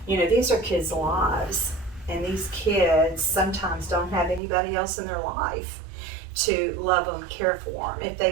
You know, these are kids' lives, and these kids sometimes don't have anybody else in their life to love them, care for them, if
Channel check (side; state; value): left; drops out; at 4.4 s